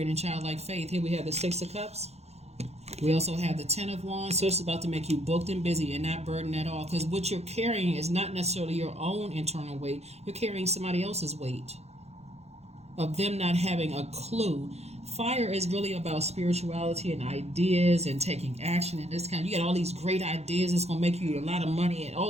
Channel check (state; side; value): late; left; 0.31 ms